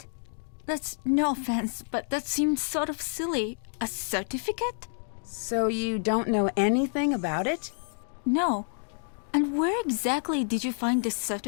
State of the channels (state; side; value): silent; right; digital silence